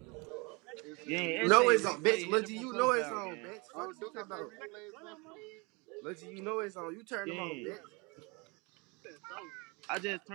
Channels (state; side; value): quieter; left; 28.6 dB